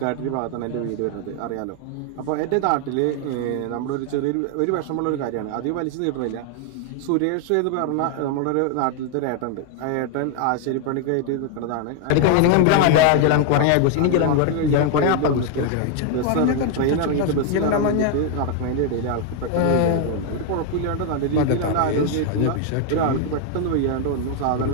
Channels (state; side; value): different; both; correlation 0.00